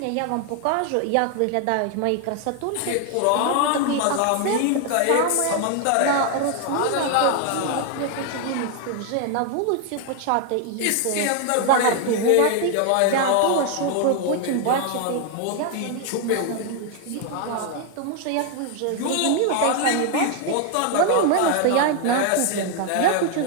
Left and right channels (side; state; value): both; different; correlation 0.00